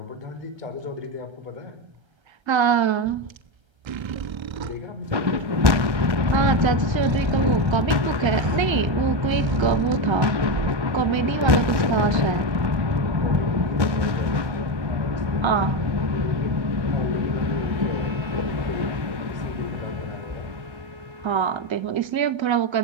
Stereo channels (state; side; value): late; left; 1.3 ms